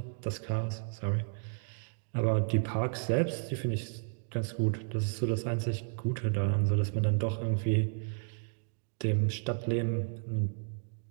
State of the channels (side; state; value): left; silent; digital silence